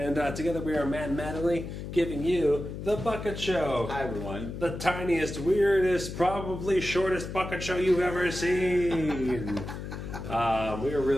together we are Matt and Mattingly giving you The Bucket Show. Hi, everyone. The tiniest, weirdest, probably shortest bucket show you've ever seen. I'm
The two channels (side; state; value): left; noise; hum, 8 dB below the sound